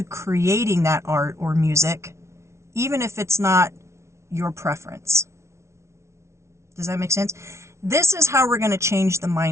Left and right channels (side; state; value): left; late; 0.13 ms